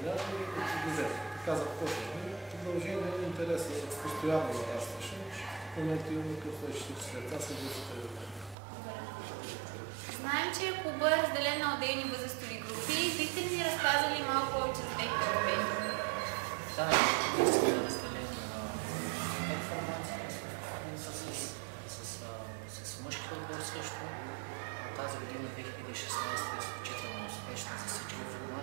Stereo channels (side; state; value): left; drops out; at 8.6 s